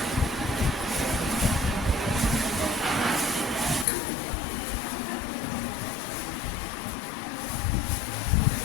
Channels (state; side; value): drops out; right; at 3.9 s